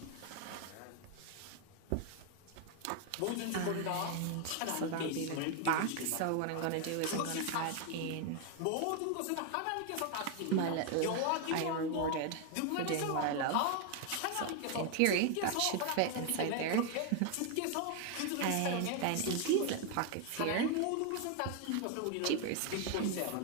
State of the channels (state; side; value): different; both; correlation 0.01